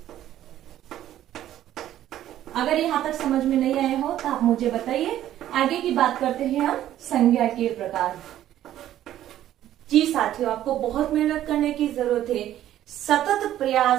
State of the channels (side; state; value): left; quieter; 12.4 dB